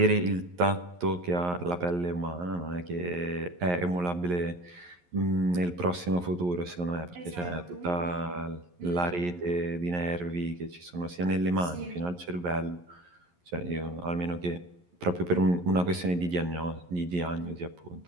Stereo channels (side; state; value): left; late; 11 ms